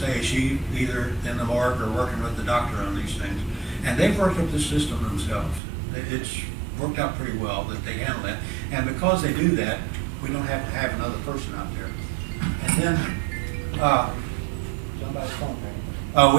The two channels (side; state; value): left; drops out; at 5.6 s